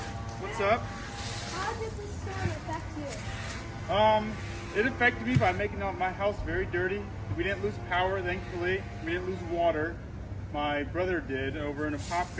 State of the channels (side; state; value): both; identical; correlation 1.00